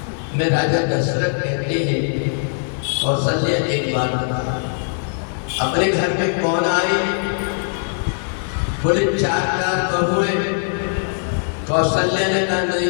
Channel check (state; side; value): silent; right; digital silence